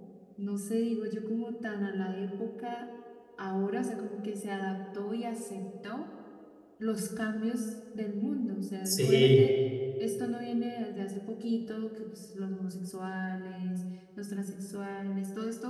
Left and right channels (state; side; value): identical; both; correlation 1.00